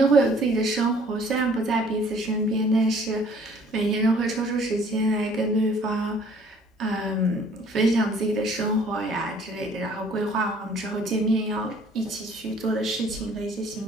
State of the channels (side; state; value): both; normal; correlation 0.56